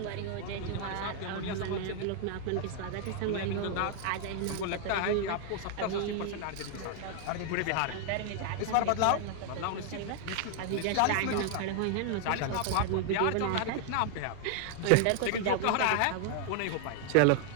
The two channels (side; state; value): both; different; correlation 0.00